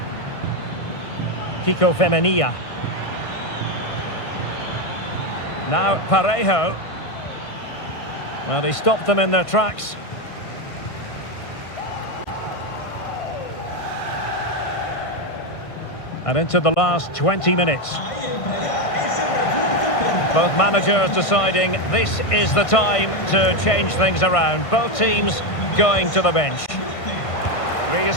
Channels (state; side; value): late; right; 1.5 ms